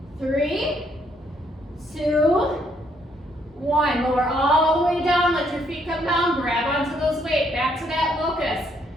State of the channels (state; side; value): normal; both; correlation 0.70